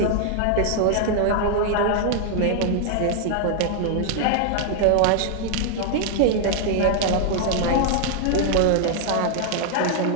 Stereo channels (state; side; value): different; both; correlation 0.00